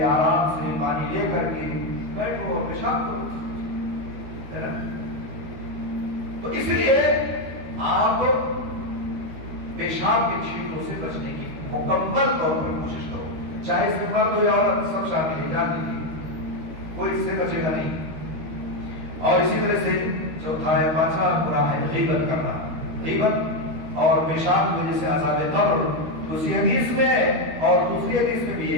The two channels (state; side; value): late; left; 13 ms